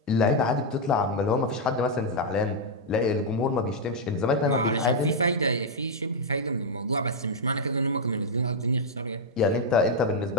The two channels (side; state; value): both; normal; correlation -0.02